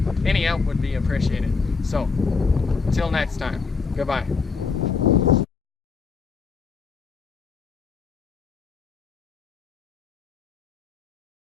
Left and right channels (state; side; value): quieter; right; 5.0 dB